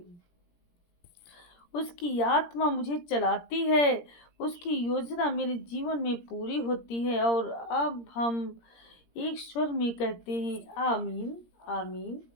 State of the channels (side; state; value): right; late; 17 ms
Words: उसकी आत्मा मुझे चलाती है। उसकी योजना मेरे जीवन में पूरी होती है। और अब हम एक स्वर में कहते हैं आमीन, आमीन,